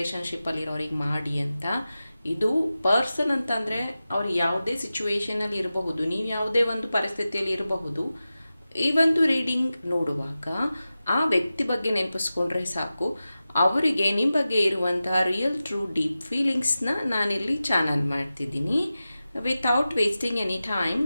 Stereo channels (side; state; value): both; inverted; correlation -0.94